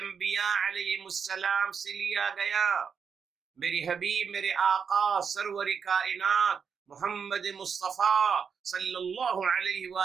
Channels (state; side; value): quieter; left; 6.4 dB